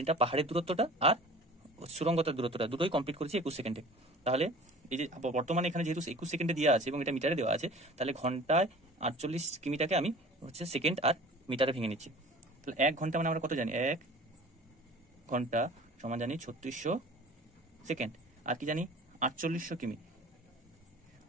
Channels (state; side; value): normal; both; correlation 0.44